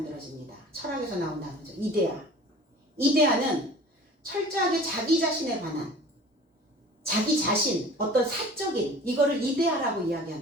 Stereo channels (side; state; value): both; normal; correlation 0.43